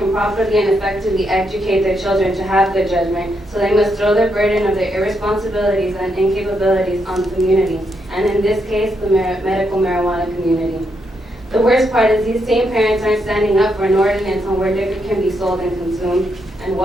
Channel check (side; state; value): both; normal; correlation 0.79